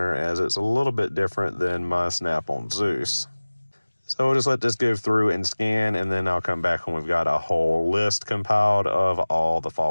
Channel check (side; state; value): both; inverted; correlation -1.00